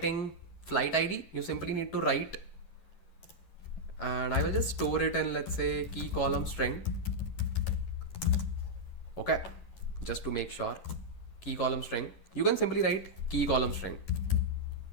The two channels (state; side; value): late; right; 11 ms